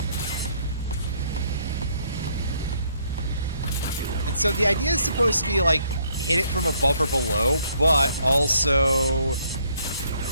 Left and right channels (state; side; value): inverted; both; correlation -0.67